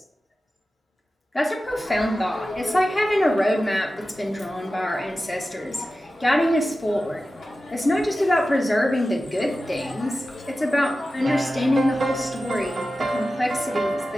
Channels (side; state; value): both; normal; correlation 0.94